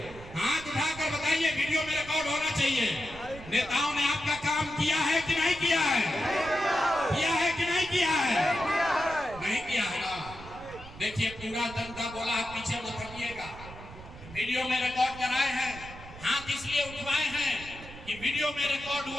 हाथ उठाकर बताइए, वीडियो में रिकॉर्ड होना चाहिए। नेताओं ने आपका काम किया है कि नहीं किया है? किया है कि नहीं किया है? नहीं किया है ना। देखिए, पूरा जनता बोला है, पीछे मत हटिएगा। वीडियो में रिकॉर्ड कराए हैं, हाथ इसलिए उठवाए हैं कि वीडियो में रिकॉर्ड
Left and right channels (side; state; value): right; noise; rumble, 16 dB below the sound